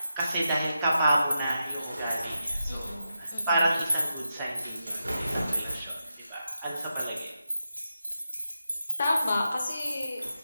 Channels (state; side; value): inverted; both; correlation -0.88